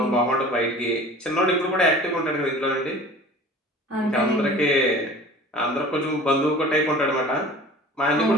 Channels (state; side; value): normal; both; correlation 0.43